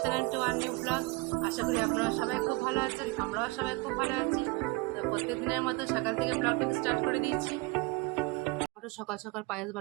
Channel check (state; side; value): quieter; left; 24.8 dB